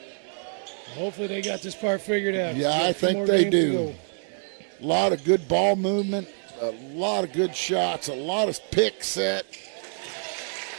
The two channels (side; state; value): left; silent; 61 dB below the other